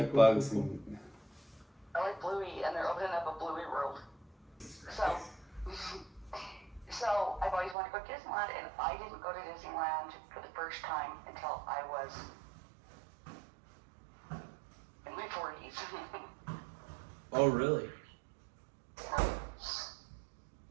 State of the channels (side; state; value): left; drops out; at 7.8 s